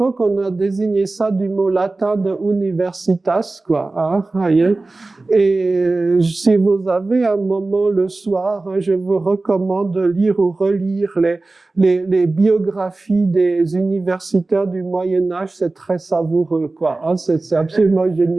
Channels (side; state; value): left; quieter; 3.3 dB